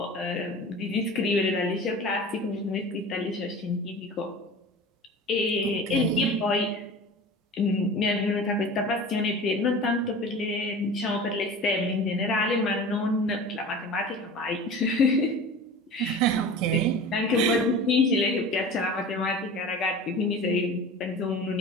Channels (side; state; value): both; normal; correlation 0.37